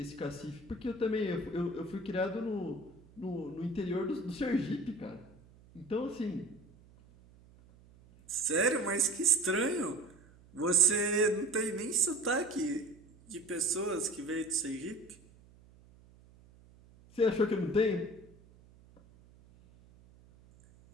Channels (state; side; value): noise; right; hum, 25 dB below the sound